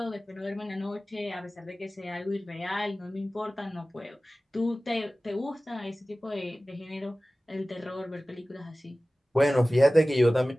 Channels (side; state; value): both; normal; correlation 0.97